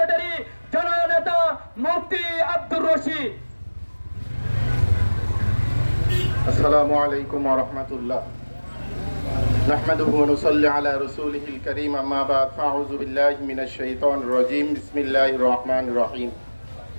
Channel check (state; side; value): inverted; both; correlation -1.00